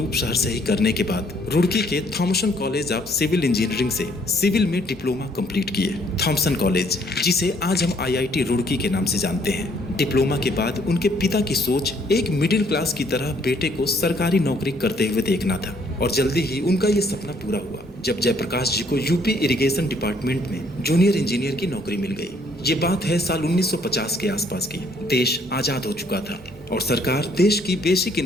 शहर से ही करने के बाद रुड़की के Thomson college of civil engineering से सिविल में डिप्लोमा कंप्लीट किए। थॉमसन कॉलेज, जिसे आज हम आईआईटी रुड़की के नाम से जानते हैं। डिप्लोमा के बाद उनके पिता की सोच एक मिडिल क्लास की तरह बेटे को सरकारी नौकरी करते हुए देखना था और जल्दी ही उनका ये सपना पूरा हुआ जब जयप्रकाश जी को यूपी इरिगेशन डिपार्टमेंट में जूनियर इंजीनियर की नौकरी मिल गई। ये बात है साल 1950 के आसपास की। देश आजाद हो चुका था और सरकार देश की बेसिक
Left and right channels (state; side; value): normal; both; correlation 0.65